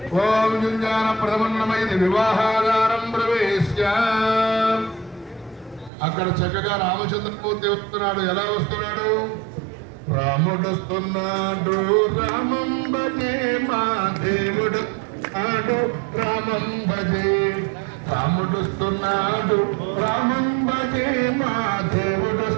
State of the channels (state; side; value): drops out; left; at 5.9 s